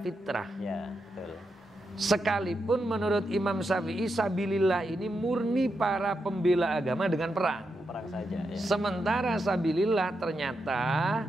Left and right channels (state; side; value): normal; both; correlation 0.85